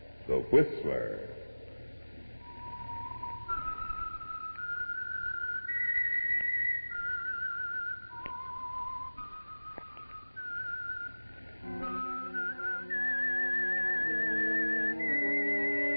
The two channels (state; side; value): inverted; both; correlation -1.00